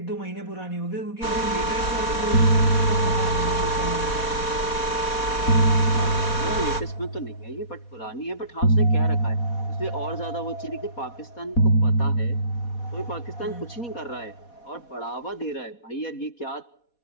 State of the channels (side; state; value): right; late; 4.2 ms